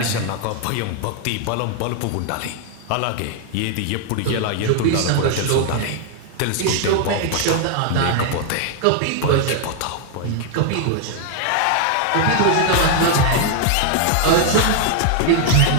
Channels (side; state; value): both; different; correlation 0.00